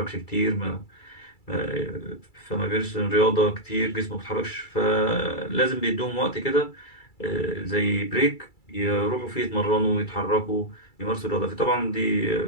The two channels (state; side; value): late; right; 2.3 ms